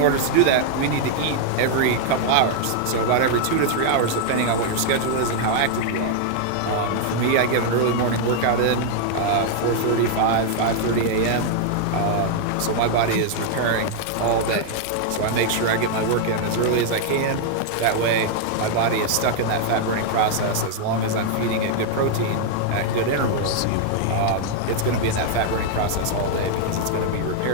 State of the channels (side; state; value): both; different; correlation 0.00